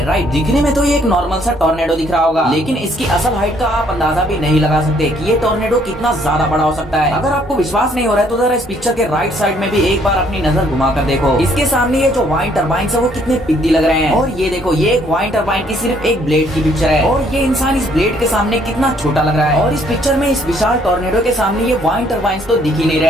राइट। दिखने में तो ये एक नॉर्मल सा टॉर्नेडो दिख रहा होगा, लेकिन इसकी असल हाइट का आप अंदाजा भी नहीं लगा सकते कि ये टॉर्नेडो कितना ज्यादा बड़ा हो सकता है। अगर आपको विश्वास नहीं हो रहा है तो जरा इस पिक्चर के राइट साइड में भी एक बार अपनी नजर घुमा कर देखो। इसके सामने ये जो वाइन टरबाइन है वो कितने पिद्दी लग रहे हैं। और ये देखो, ये एक वाइन टरबाइन की सिर्फ एक ब्लेड की पिक्चर है, और ये इंसान इस ब्लेड के सामने कितना छोटा लग रहा है। और इस पिक्चर में इस विशाल टॉर्नेडो के सामने ये वाइन टरबाइन तो दिख ही नहीं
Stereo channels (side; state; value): both; normal; correlation 0.65